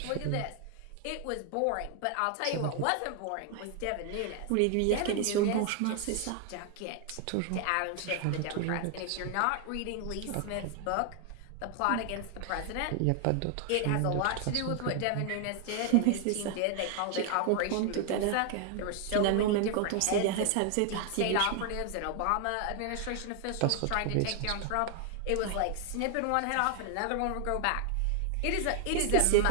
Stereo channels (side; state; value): both; different; correlation 0.00